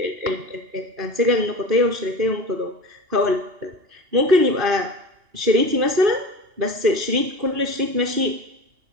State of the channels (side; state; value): left; late; 2.8 ms